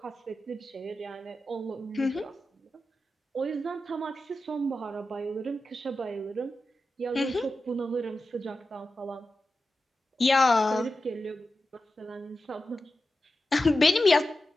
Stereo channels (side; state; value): both; normal; correlation 0.92